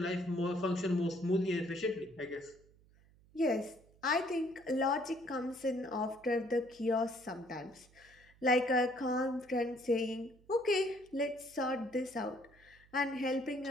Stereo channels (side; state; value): right; noise; hum, 28 dB below the sound